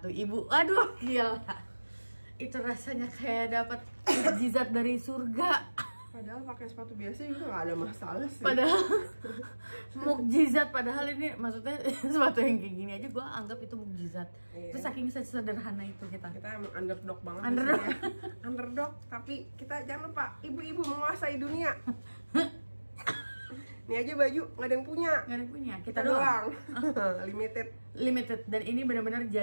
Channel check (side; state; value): both; inverted; correlation -1.00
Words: ibu. Aduh gila, itu rasanya kayak dapat mukjizat dari surga. Padahal pakai sepatu biasa juga gak ada masalah sih. Padahal mukjizat, padahal ini maksudnya sepatu yang kayak gini aja gue anggap itu mukjizat. Iya. Terus saking sederhana itu kita. Kita emang underdog banget. Underdog. Ya. Underdog, tapi kita jangan lupa ibu-ibu menguasai dunia. Ini aja baju nggak ada yang punya. Nggak ada yang punya, Kita doang. Limited. Dan ini benar-benar